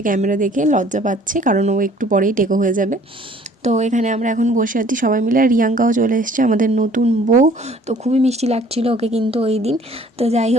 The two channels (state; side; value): normal; both; correlation 0.55